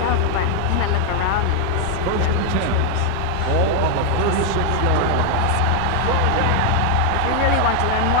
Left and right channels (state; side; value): different; both; correlation 0.00